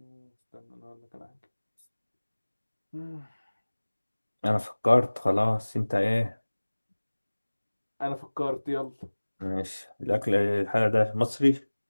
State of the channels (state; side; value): inverted; both; correlation -1.00